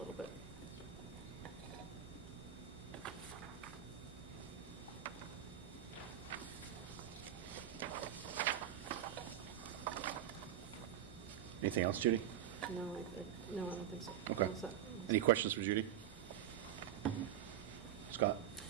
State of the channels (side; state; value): left; quieter; 10.6 dB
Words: bit. Anything else, Judy? No, I don't think so. Okay. All set. Any questions for Judy? Scott?